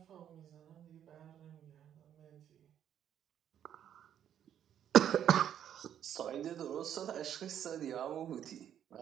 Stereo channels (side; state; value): left; quieter; 9.9 dB